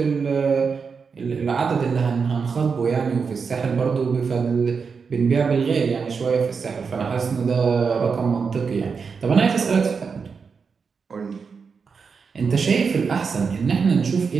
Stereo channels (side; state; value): left; quieter; 5.5 dB